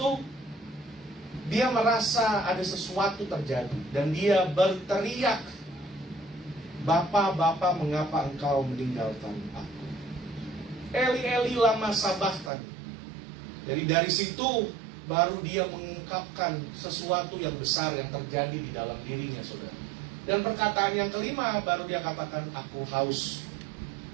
dia merasa ada sesuatu terjadi, dan dia berteriak, Bapa, Bapa, mengapa engkau meninggalkan aku? Eli, Eli, lama sabachthani. Jadi dari situ baru dia mengungkapkan sesuatu yang besar yang terjadi di dalam dirinya, saudara. Dan perkataan yang kelima, baru dia katakan, aku haus.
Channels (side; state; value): left; drops out; at 12.5 s